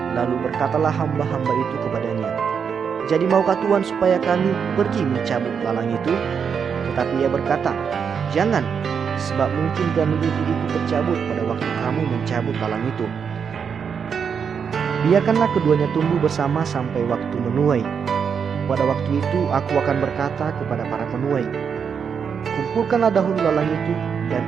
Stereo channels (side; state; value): left; quieter; 6.8 dB